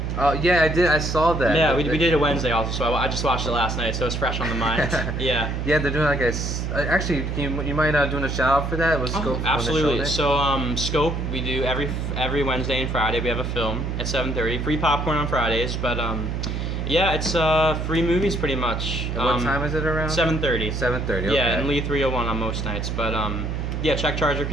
Oh yeah, I did. I saw that. Yeah, we did it Wednesday also, so I just watched it last night, so it's fresh on the mind. Yeah. Yeah, they're doing like actually, you mind doing a shout out for that? Was Scope? Absolutely. So Scope, we do every Wednesday and Friday. We have a film at 7:30. Free popcorn on Fridays, but Yeah, it's free movies pretty much. And what time is it around? 7:30. 7:30. Okay. Yeah, and Lee 301 on most nights. But yeah, check Charger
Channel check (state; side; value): noise; right; hum, 2 dB below the sound